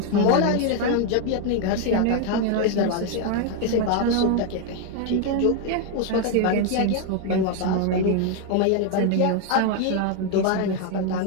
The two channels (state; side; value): different; both; correlation 0.01